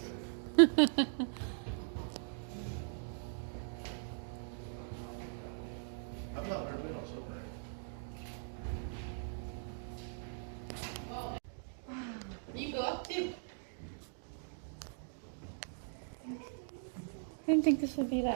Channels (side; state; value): left; silent; digital silence